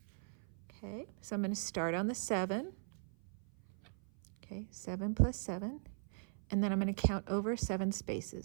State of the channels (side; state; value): left; silent; 52 dB below the other